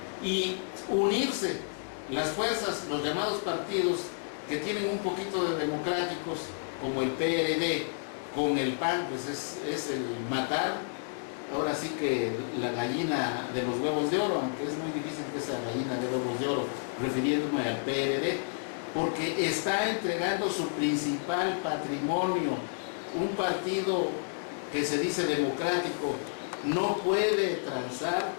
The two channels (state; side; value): silent; right; digital silence